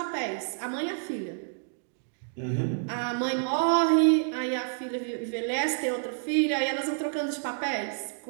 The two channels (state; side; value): silent; left; digital silence